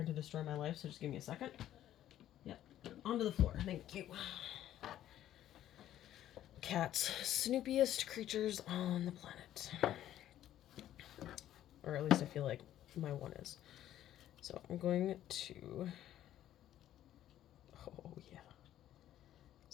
to destroy my life, so just give me a second. Yep, onto the floor. Thank you. Cats, snoopiest creatures on the planet. Or at least I feel like my one is. So I'm going to... Oh, yeah.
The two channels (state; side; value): quieter; right; 12.3 dB